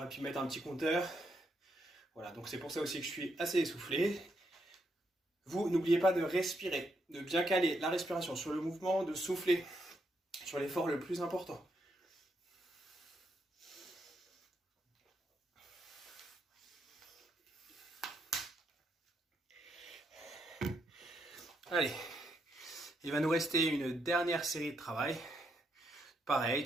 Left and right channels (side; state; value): both; normal; correlation 0.78